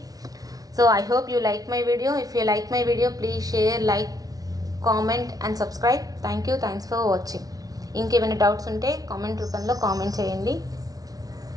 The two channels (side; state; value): left; late; 0.18 ms